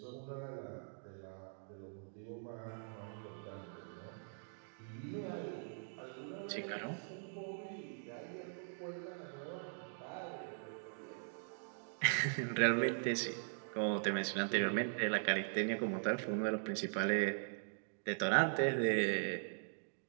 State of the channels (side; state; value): left; silent; digital silence